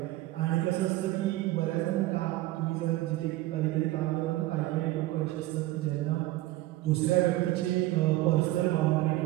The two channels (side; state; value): left; quieter; 17.0 dB